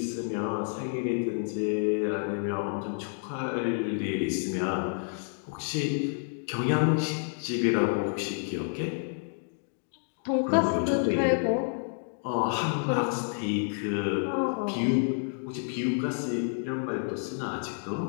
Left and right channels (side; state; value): right; silent; 57 dB below the other